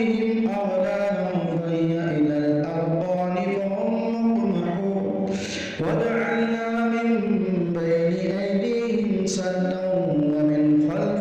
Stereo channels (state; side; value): identical; both; correlation 1.00